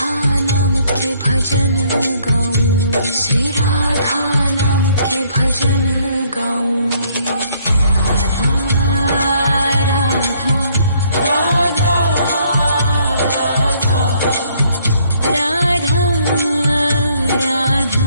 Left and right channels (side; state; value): both; inverted; correlation -0.65